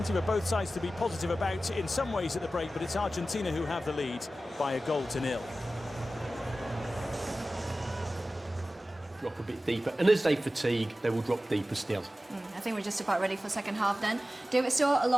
for both sides to be positive about in some ways at the break, but it's Argentina who have the lead by 1-0. Drop a bit deeper, and as they fatigue, they will drop deeper still. I think we're just about ready for second half then. David Stewart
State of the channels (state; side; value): normal; both; correlation 0.95